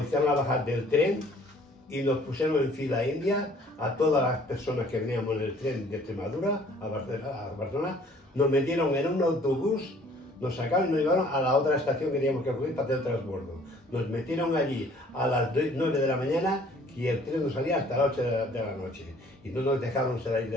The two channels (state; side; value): normal; both; correlation 0.56